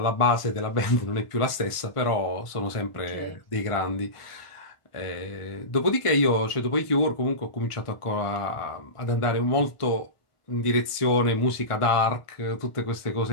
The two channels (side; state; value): right; late; 1.4 ms